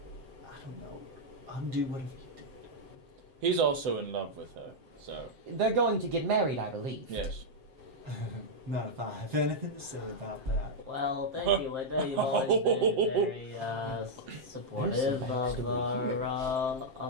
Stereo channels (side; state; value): left; late; 7.6 ms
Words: don't know, undo whatever you did. He's also in love with her, so They're going to get married, I believe. yes. Not if I have anything to say about that. Well, thank you, Linda. You've always been very supportive of